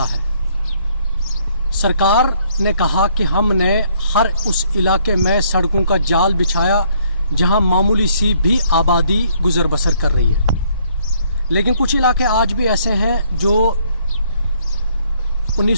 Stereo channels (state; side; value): inverted; both; correlation -0.66